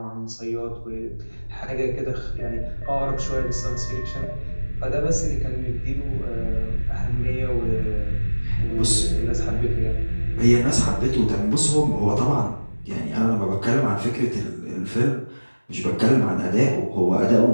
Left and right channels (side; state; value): both; inverted; correlation -1.00